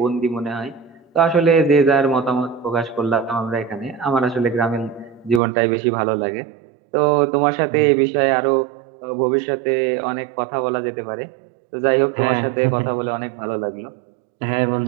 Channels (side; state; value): left; drops out; at 5.4 s